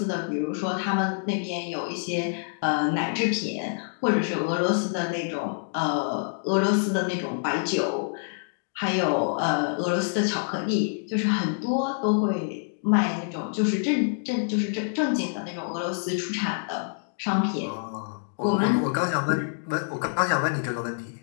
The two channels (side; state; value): right; silent; digital silence